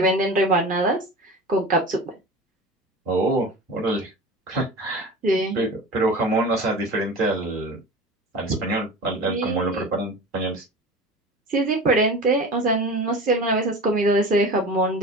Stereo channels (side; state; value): both; normal; correlation 0.34